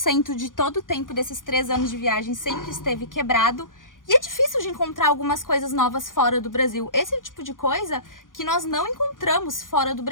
de todo o tempo desses 3 anos de viagem sempre esteve quebrado. E é difícil de encontrar algumas coisas novas fora do Brasil. Esse é o tipo de coisa que nós não encontramos fora do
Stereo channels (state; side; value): late; right; 0.89 ms